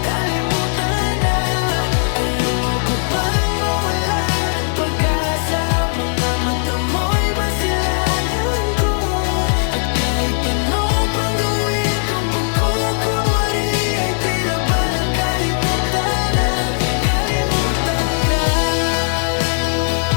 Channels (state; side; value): silent; right; digital silence